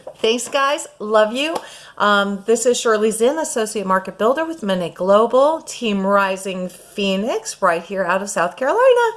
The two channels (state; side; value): identical; both; correlation 1.00